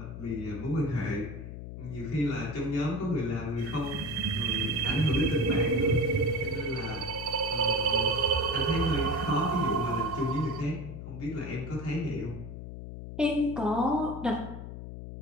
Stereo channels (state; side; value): noise; left; hum, 9 dB below the sound